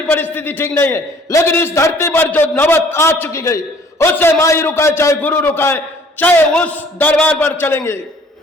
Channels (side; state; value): both; normal; correlation 0.55